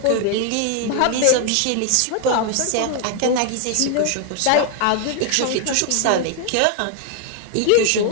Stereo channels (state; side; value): different; both; correlation 0.00